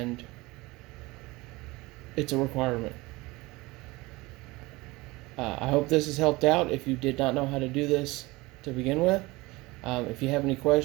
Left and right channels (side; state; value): left; quieter; 22.0 dB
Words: it's a requirement. I hope this has helped out if you did not know how to do this to begin with. If you have any